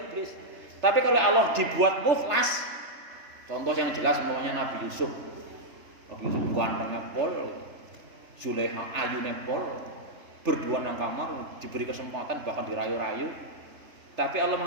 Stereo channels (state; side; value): late; left; 3.3 ms